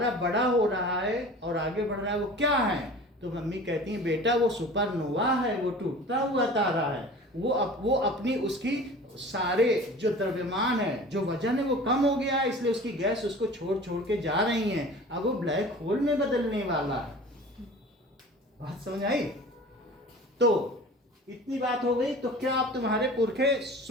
बड़ा हो रहा है और आगे बढ़ रहा है, वो क्या है? तो मम्मी कहती है, बेटा वो सुपरनोवा है, वो टूटता हुआ तारा है। वो अपनी उसकी सारे जो द्रव्यमान है, जो वजन है, वो कम हो गया है, इसलिए उसकी गैस उसको छोड़ छोड़ के जा रही है। अब वो ब्लैक होल में बदलने वाला है। बात समझ आई? तो इतनी बात हो गई। तो क्या आप तुम्हारे पुरखे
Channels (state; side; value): normal; both; correlation 0.41